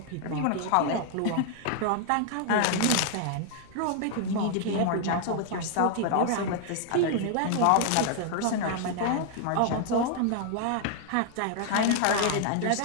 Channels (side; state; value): both; different; correlation 0.00